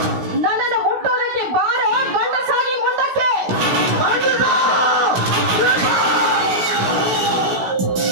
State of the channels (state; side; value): late; left; 16 ms